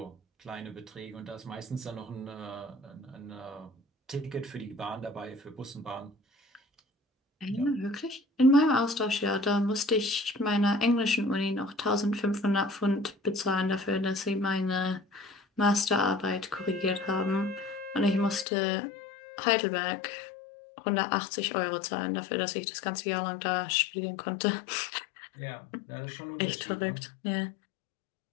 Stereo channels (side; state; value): right; drops out; at 18.4 s